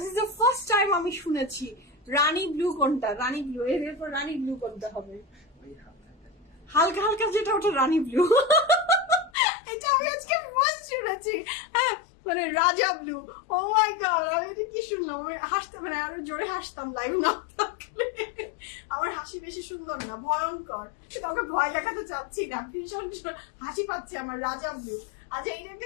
is the first time আমি শুনেছি। রানী ব্লু কোনটা? রানী ব্লু, এরপর রানী ব্লু কোনটা হবে? হালকা হালকা যেটা ওটা রানী ব্লু। এটা আমি আজকে ফার্স্ট শুনেছি। হ্যাঁ মানে রাজা ব্লু। ও মাই গড, আমি এটা কি শুনলাম? আমি হাসতে মানে আরো জোরে হাসতাম লাইভ না থাকলে। আমার হাসি বেশি সুন্দর না, ভয়ঙ্কর। কাউকে ভয় দেখাতে চাচ্ছি না, ভীষণ হাসি পাচ্ছে আমার। রাজা ব্লু। আচ্ছা এটা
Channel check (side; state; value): right; drops out; at 9.3 s